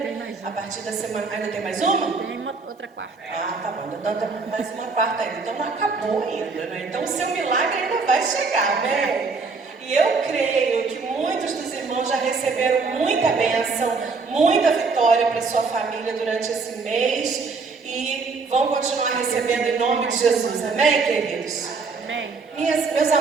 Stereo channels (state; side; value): quieter; left; 4.4 dB